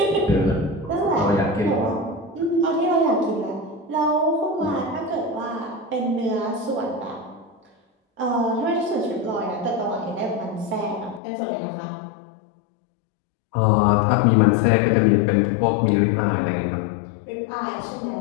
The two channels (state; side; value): drops out; right; at 11.2 s